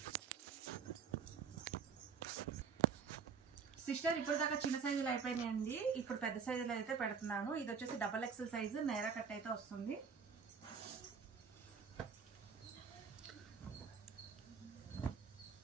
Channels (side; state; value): left; quieter; 6.1 dB